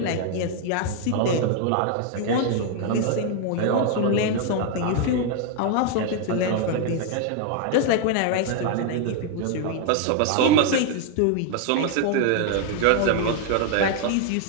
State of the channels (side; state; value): both; different; correlation 0.00